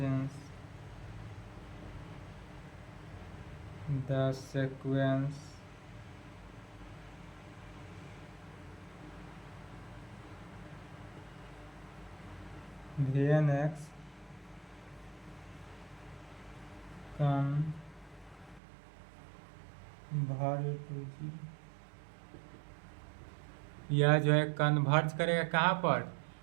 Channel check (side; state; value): left; drops out; at 18.6 s